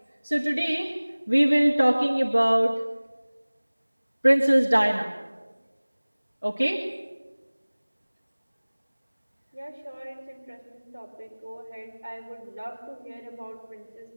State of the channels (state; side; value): inverted; both; correlation -1.00